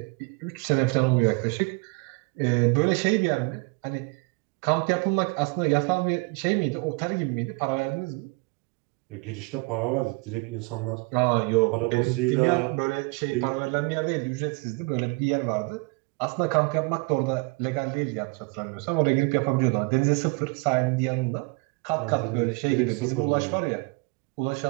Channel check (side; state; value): left; quieter; 28.4 dB